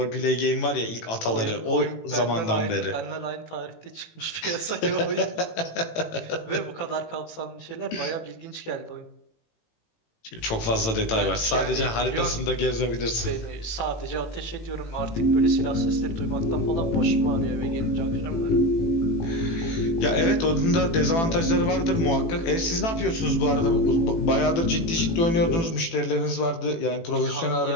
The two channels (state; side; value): late; right; 18 ms